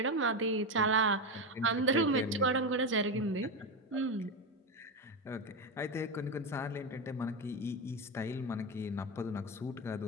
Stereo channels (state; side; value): normal; both; correlation 0.14